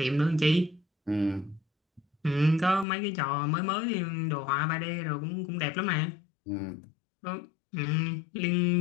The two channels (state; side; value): drops out; right; at 2.9 s